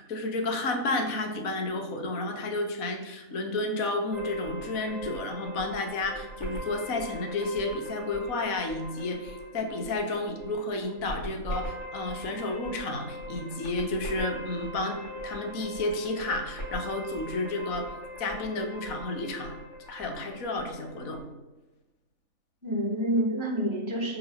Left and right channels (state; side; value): late; right; 3.4 ms